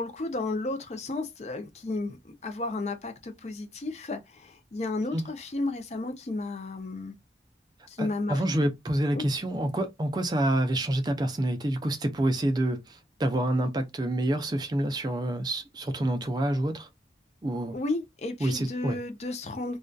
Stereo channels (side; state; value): both; normal; correlation 0.78